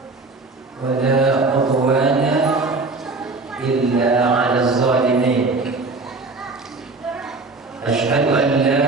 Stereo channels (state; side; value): quieter; left; 3.6 dB